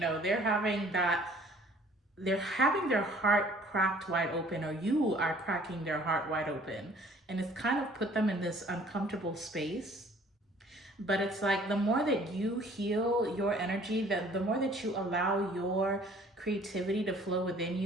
they're having their heart cracked wide open, or you are cracking their heart wide open. And it's kind of put them in this uncomfortable space. But it's like the more that you heal your energy, the more that you allow your creativity to flow within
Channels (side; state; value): both; normal; correlation 0.55